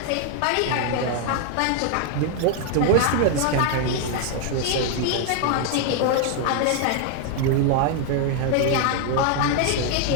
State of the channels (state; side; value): different; both; correlation 0.00